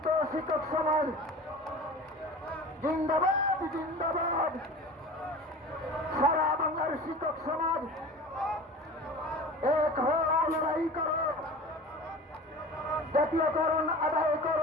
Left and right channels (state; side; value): normal; both; correlation 0.37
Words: শিক্ষক সমাজ জিন্দাবাদ, জিন্দাবাদ। সারা বাংলার শিক্ষক সমাজ এক হও, লড়াই করো, জাতীয়করণ আদায়